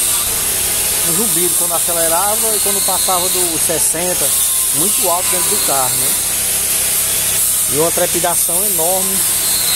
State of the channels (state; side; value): noise; left; hum, 24 dB below the sound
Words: Um zumbido quando acelerava e quando passava dos 60, muito alto dentro do carro, né? E uma trepidação enorme